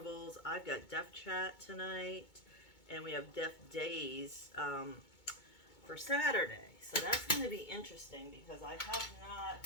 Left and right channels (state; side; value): late; right; 2.2 ms